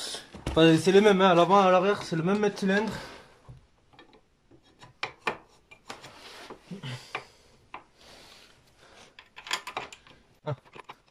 Enfin, c'est les mêmes, hein. À l'avant et à l'arrière, c'est le même mètre cylindre. Ah.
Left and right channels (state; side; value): identical; both; correlation 1.00